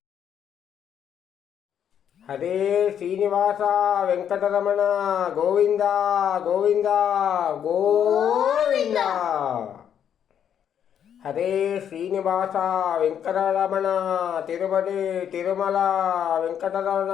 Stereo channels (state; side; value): quieter; right; 9.0 dB